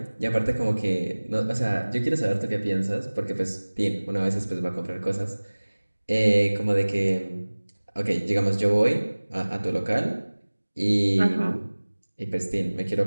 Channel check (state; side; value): inverted; both; correlation -1.00